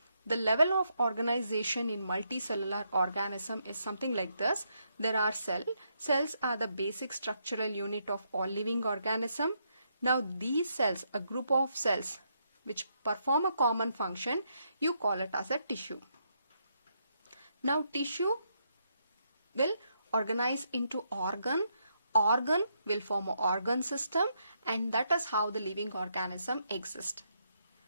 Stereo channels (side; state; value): both; inverted; correlation -0.77